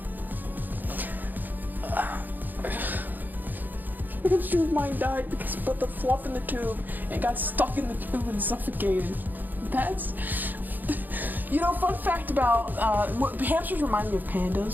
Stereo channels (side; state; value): left; late; 0.087 ms